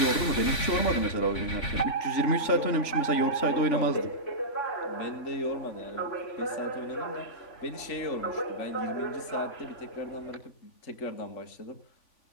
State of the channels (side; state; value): right; late; 3.5 ms